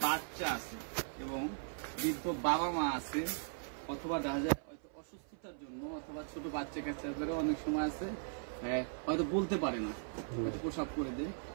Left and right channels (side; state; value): left; silent; 52 dB below the other